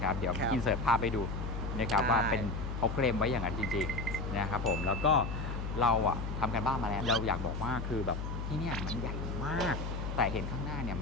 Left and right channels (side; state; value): left; noise; hum, 4 dB below the sound